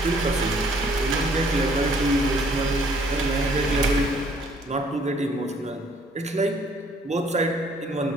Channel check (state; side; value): normal; both; correlation 0.61